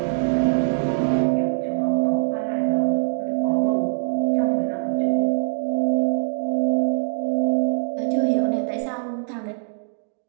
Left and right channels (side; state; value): left; silent; digital silence